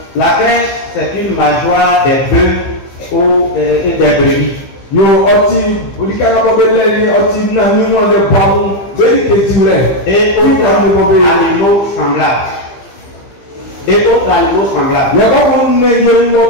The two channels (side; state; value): right; late; 15 ms